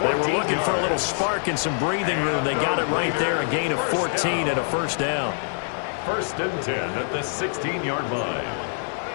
14 They were looking for a little yards. spark and some breathing room. They got it right there, a gain of 14 and a first down. 1st and 10 at the 16-yard line.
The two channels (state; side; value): silent; right; digital silence